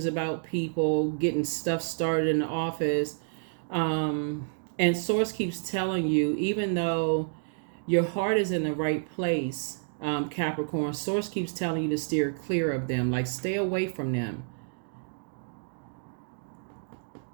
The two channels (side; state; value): left; silent; digital silence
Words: about people, getting stuff started in the office. And Source keeps telling you, even though your heart is in the right place, Capricorn, Source keeps telling you to steer clear of them, like stay away from them.